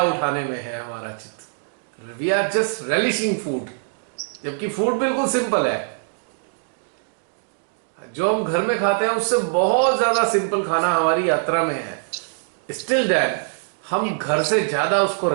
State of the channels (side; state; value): left; silent; digital silence